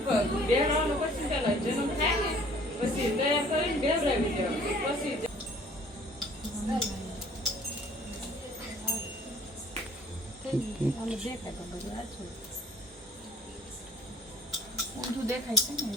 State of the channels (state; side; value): normal; both; correlation 0.54